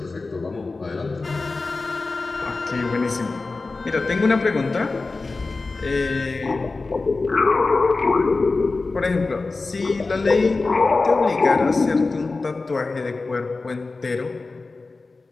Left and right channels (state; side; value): quieter; right; 3.7 dB